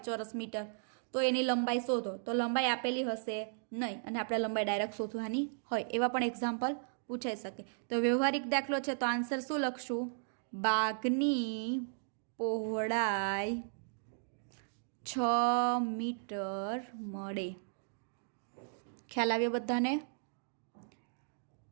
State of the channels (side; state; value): left; silent; digital silence